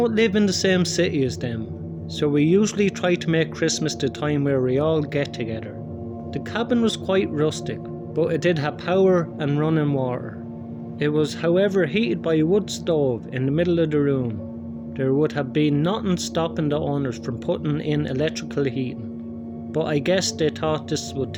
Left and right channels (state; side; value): identical; both; correlation 1.00